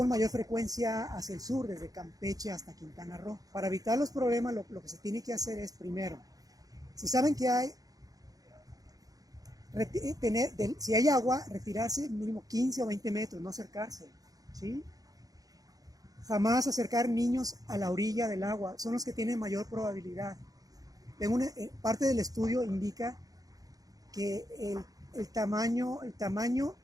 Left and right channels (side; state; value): left; late; 0.18 ms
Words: mayor frecuencia hacia el sur, desde Campeche hasta Quintana Roo. Para evitar los problemas, lo que se tiene que hacer es, primero, si saben que si hay agua, retirarse mínimo 15 o 20 metros, no acercarse, ¿sí? Jamás acercar niños a la orilla del agua, son los que tienen mayor probabilidad. Parte del estudio indica que el tamaño,